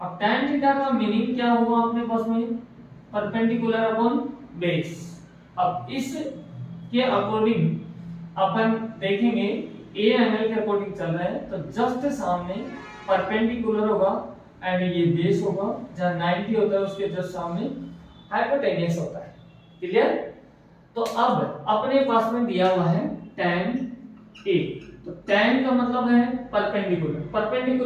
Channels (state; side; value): identical; both; correlation 1.00